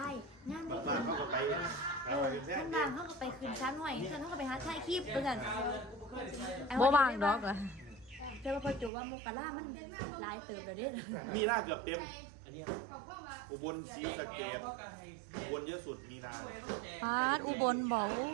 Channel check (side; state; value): left; drops out; at 8.9 s